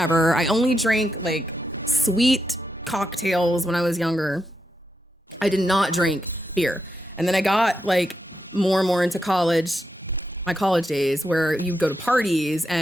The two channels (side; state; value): both; normal; correlation 0.84